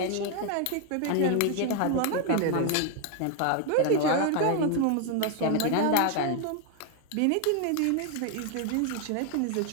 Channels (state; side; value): different; both; correlation 0.00